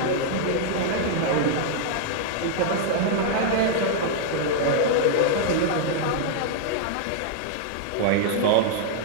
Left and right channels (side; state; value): both; different; correlation -0.01